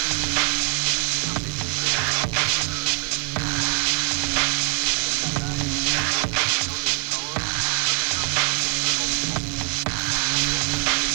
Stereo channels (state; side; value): quieter; left; 36.8 dB